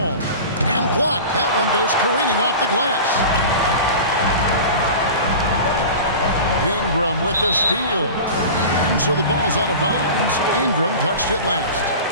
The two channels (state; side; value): inverted; both; correlation -0.34